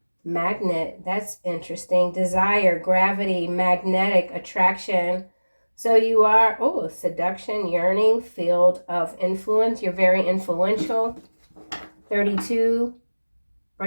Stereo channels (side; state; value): both; inverted; correlation -1.00